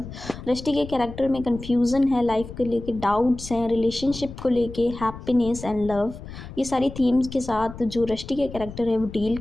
Rusty के कैरेक्टर में confusion है, life को लेके डाउट्स हैं, रिलेशनशिप को लेके हैप्पीनेस एंड लव, ये सारी थीम्स के साथ जो रस्टी के कैरेक्टर है वो डील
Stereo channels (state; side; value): noise; left; rumble, 13 dB below the sound